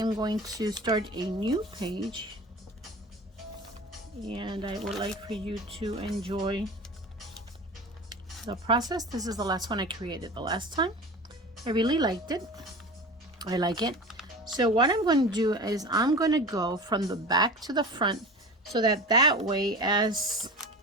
going to start a new page, and I would like for you to enjoy the process. This is the last one I created the last time. I really liked it. I like it. So what I'm going to do is I'm going to go from the back to the front, so that way as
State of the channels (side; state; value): both; normal; correlation 0.33